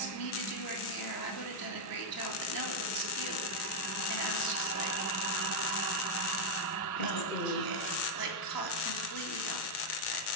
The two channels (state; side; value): late; right; 2.1 ms